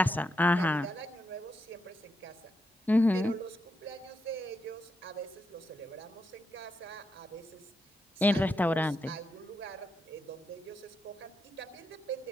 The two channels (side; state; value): both; normal; correlation 0.83